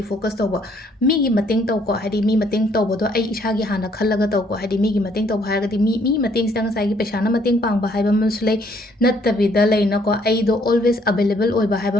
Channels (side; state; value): both; normal; correlation 0.65